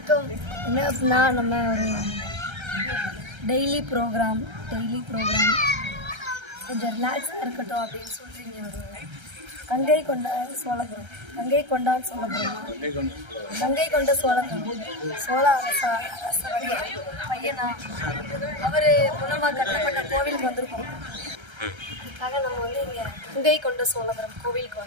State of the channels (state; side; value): late; left; 1.3 ms